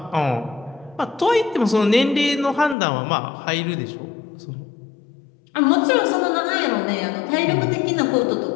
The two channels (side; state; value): right; drops out; at 2.8 s